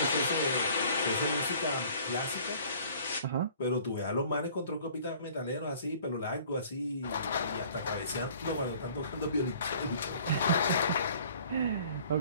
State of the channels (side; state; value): both; inverted; correlation -0.53